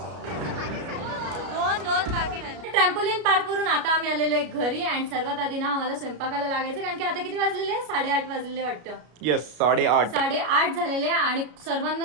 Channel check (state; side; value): late; left; 33 ms